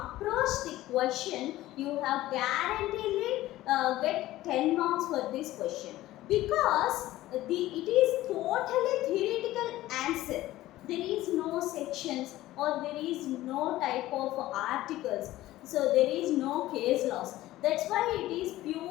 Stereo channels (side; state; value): right; quieter; 15.9 dB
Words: the question, you have guaranteed get 10 marks for this question, because it is totally theoretical answer. There is no sections or there is no type of articles, so there is no case laws. That's why it is